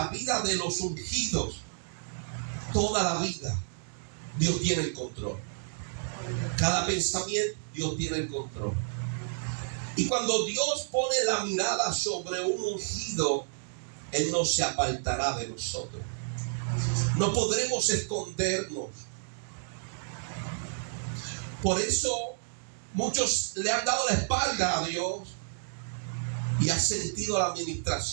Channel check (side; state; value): left; silent; digital silence